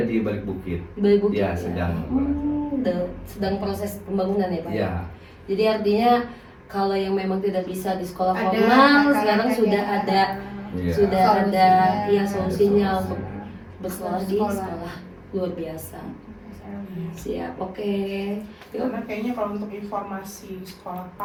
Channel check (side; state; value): both; identical; correlation 1.00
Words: di balik bukit. Bayi Bukit Ya, sedang. sedang proses pembangunan ya Pak. Ya. Jadi artinya kalau yang memang tidak bisa di sekolah Ada formal kakak-kakaknya. sekarang sudah ada Iya. ada Solusinya. ya solusinya Ada untuk solusinya. bersekolah di Sekolah. sekolah luar biasa. Siap, oke. Yuk. Karena kayaknya kalau untuk informasi sekolah